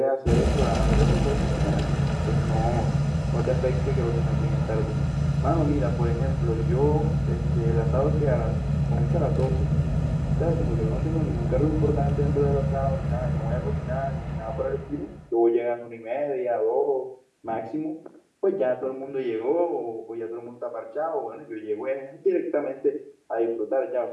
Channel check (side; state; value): both; identical; correlation 1.00